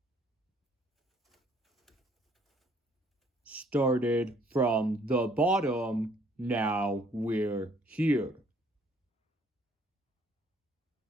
Started from the bottom, now we're here.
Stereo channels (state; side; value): normal; both; correlation 0.63